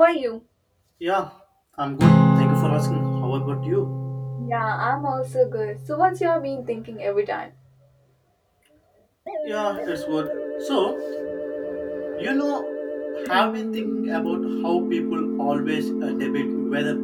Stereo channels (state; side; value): identical; both; correlation 1.00